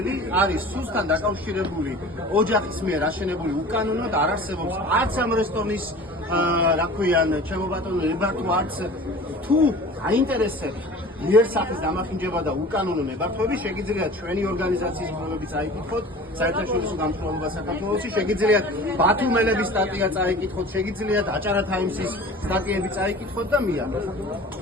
არის სუსთან დაკავშირებული ოჯახის მიერ აშენებული უკანონოდ არ არსებობს არც ამ რესტორნის რა ქვიან ჩემო ბატონო ნებართვა არც თუ აინტერესებს იერსახის დამახინჯება და უკანონო ნებართვები შეგიძლიათ ჩვენი ორგანიზაციის პრობლემები წაიკითხოთ საერთაშორისო გამსხვილება საქართველოში შეგიძლიათ ბათუმელების სტატია წაიკითხოთ შეგიძლიათ აჭარა თაიმსის სტატიები წაიკითხოთ და მიიღოთ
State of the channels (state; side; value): normal; both; correlation 0.41